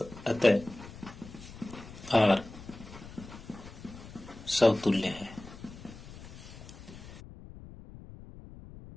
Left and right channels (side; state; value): left; noise; rumble, 15 dB below the sound